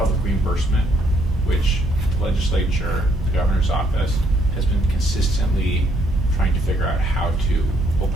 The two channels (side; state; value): both; normal; correlation 0.69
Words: reimbursement, which the legislature, the governor's office, has been consistently trying to figure out how to